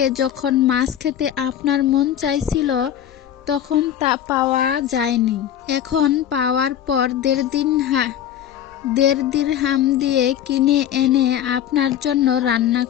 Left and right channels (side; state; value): right; quieter; 10.4 dB